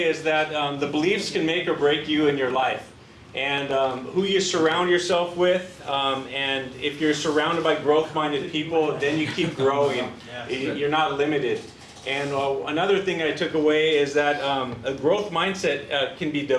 is that the beliefs can make or break you in your life, and who you surround yourself with, and if you're surrounded by growth-minded people, then you keep growing. You're not limited. And another thing I took away is that a growth mindset can be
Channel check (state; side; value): identical; both; correlation 1.00